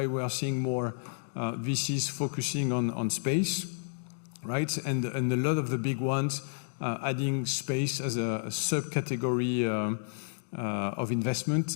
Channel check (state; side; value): silent; right; digital silence